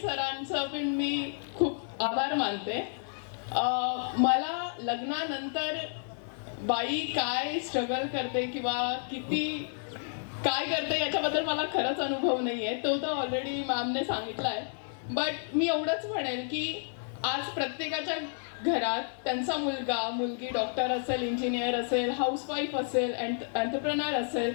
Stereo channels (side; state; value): right; silent; digital silence